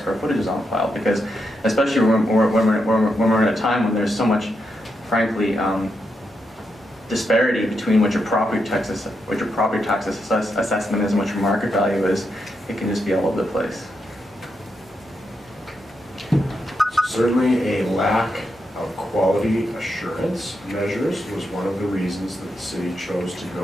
footage is on file. Because especially when we're in a time when there's so much, frankly, disparity between what your property tax assessment is and what your market value is, it can just be all over the place. Certainly a lack of quality assurance measures was one of the reasons that the city chose to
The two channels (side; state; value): both; normal; correlation 0.83